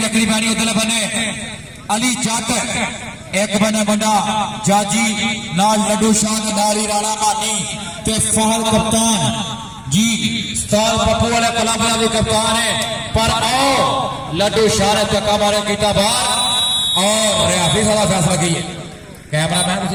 वेखनी पैनी उधर बने अली जट एक बने बंदा जाजी नाल लड्डू शाह नारी राणा मानी ते फहल कप्तान जी उस्ताद पप्पू वाले कलाबरा भी कप्तान है पर आओ लड्डू शाह ने चक्का मारे कीता बाहर और रियाफी साला फैसला की कैमरा मैन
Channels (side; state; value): both; identical; correlation 1.00